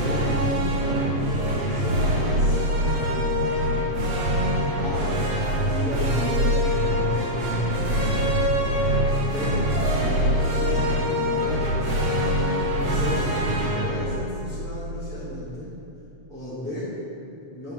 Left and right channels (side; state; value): left; late; 7.9 ms